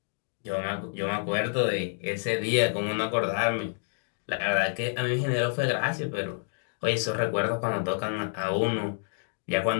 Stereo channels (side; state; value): right; silent; digital silence